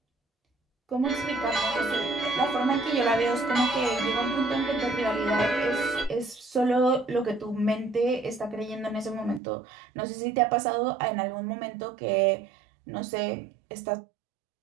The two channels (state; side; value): drops out; left; at 9.4 s